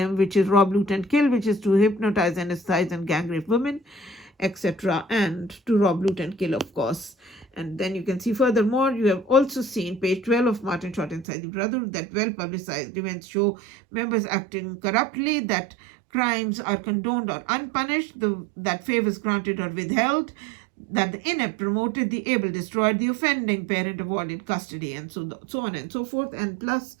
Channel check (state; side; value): drops out; left; at 11.2 s